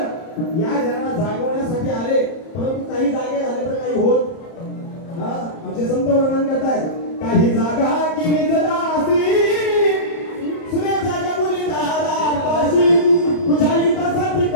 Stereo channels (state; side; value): late; right; 30 ms